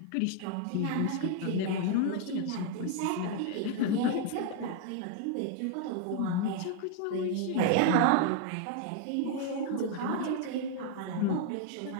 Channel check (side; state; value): both; different; correlation 0.00